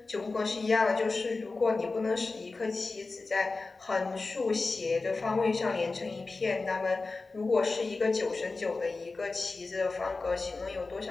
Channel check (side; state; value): right; quieter; 3.7 dB